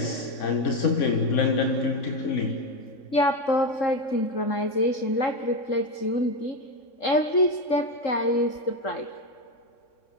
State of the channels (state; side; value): late; right; 3.6 ms